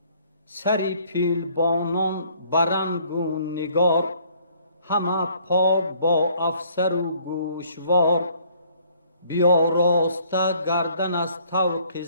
سری پیلبانان برنگ و نگار، همه پاک با افسر و گوشوار. بیاراسته گردن از طوق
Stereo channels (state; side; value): inverted; both; correlation -0.61